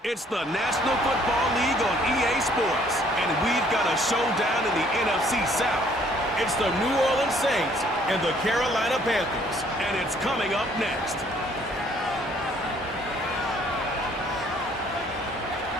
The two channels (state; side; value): normal; both; correlation 0.62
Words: It's the National Football League on EA Sports, and we've got a showdown in the NFC South. It's the New Orleans Saints and the Carolina Panthers, and it's coming up next.